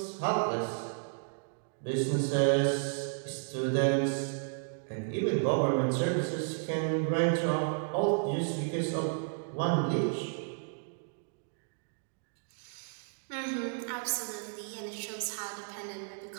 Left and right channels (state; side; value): silent; left; digital silence